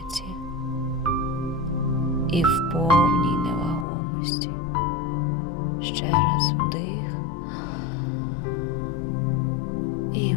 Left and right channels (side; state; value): right; drops out; at 3.9 s